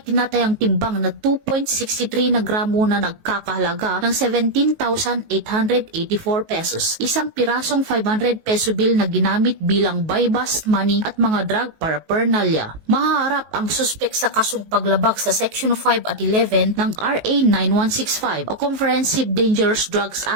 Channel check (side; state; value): left; late; 19 ms